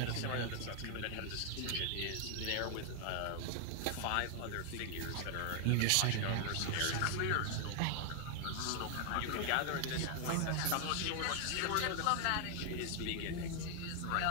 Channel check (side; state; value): both; different; correlation 0.00